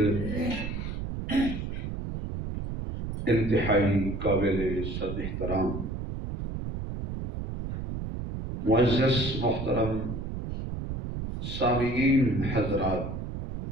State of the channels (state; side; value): noise; right; rumble, 5 dB below the sound